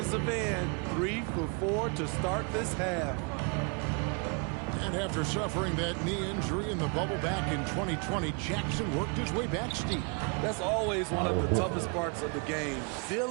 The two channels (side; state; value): left; quieter; 34.6 dB